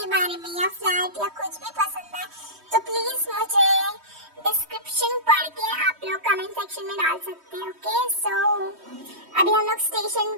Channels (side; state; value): left; late; 3.1 ms